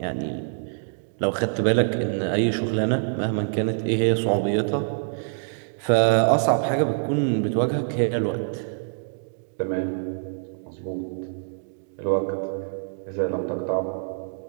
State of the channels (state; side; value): silent; left; digital silence